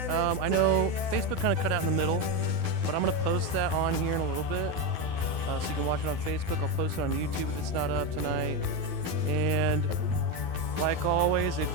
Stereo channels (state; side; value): late; left; 12 ms